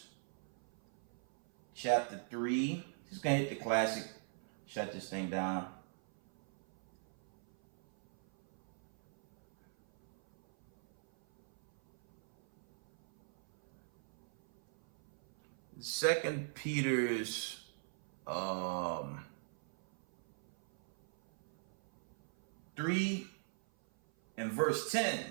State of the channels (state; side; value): silent; left; 52 dB below the other